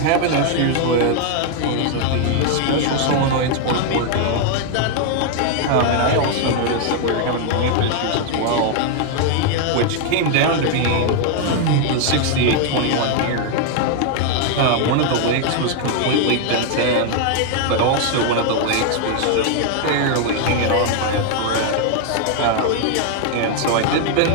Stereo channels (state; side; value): different; both; correlation 0.00